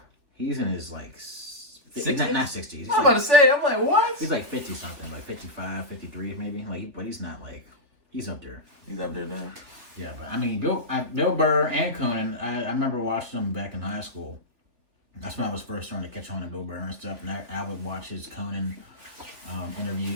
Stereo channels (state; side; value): late; left; 3.4 ms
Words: He's in his, like, 60s? Not 60s. I'm about to say, I'm like, what? He's like 50 something, like 55, 53 maybe. Like, but he's not like, he's up there. He's up there now. Yeah, but I mean, Bill Burr and Conan, I remember watching them back in high school. That's when I was first starting to catch on to Bill Burr and stuff, and I would watch his Conan